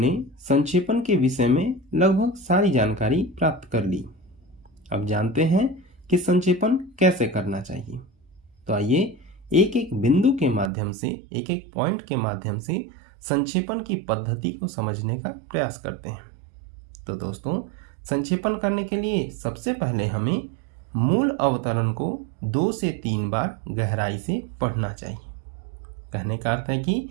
संक्षेपण के विषय में लगभग सारी जानकारी प्राप्त कर ली। अब जानते हैं कि संक्षेपण कैसे करना चाहिए। तो आइए एक एक बिंदु के माध्यम से, एक एक पॉइंट के माध्यम से संक्षेपण की पद्धति को समझने का प्रयास करते हैं। तो दोस्तों, संक्षेपण करने के लिए सबसे पहले हमें मूल अवतरण को 2 से 3 बार गहराई से पढ़ना चाहिए। कहने का अर्थ है कि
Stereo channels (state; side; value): drops out; left; at 10.7 s